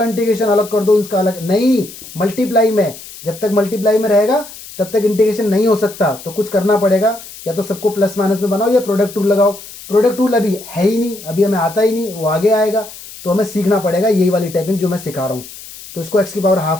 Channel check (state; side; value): noise; left; hiss, 16 dB below the sound